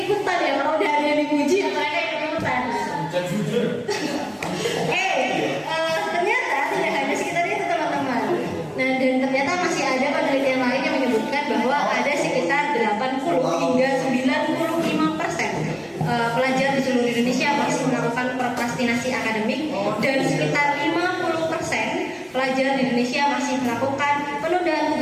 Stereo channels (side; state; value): both; identical; correlation 1.00